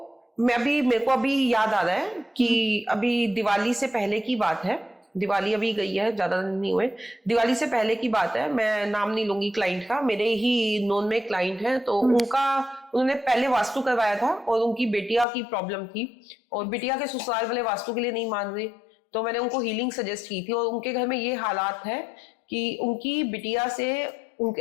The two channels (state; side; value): drops out; right; at 15.2 s